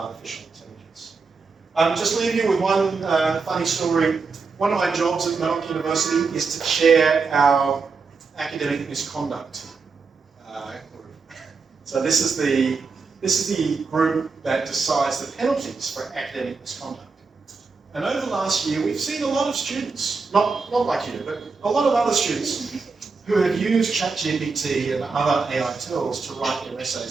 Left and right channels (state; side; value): quieter; left; 4.6 dB